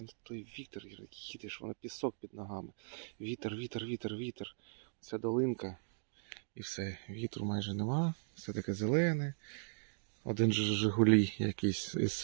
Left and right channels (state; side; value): silent; left; digital silence